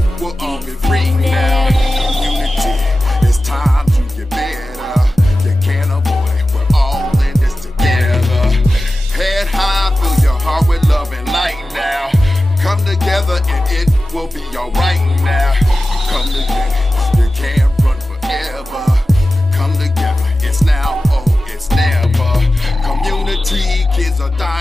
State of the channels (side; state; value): both; normal; correlation 0.94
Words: will all be free now. Community, it's time to get better. You can't avoid it, we're all in this together. Head high, fill your heart with love and light now. Come together and it will be alright now. Come together, you can't run forever. Come together, it's now or it's never. Community, kids are